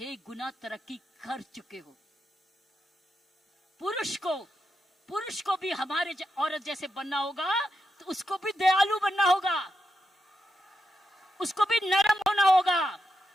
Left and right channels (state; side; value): normal; both; correlation 0.86